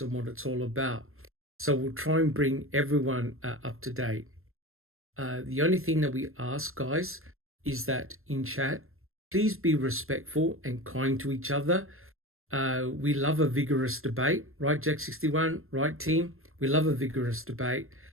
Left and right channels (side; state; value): left; late; 0.61 ms